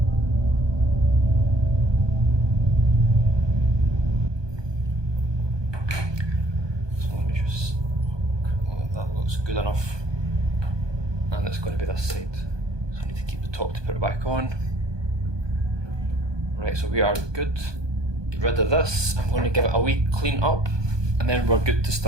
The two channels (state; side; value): late; left; 1.2 ms